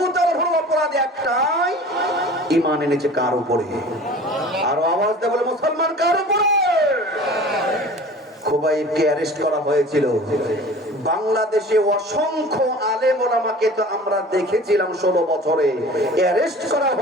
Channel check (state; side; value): normal; both; correlation 0.42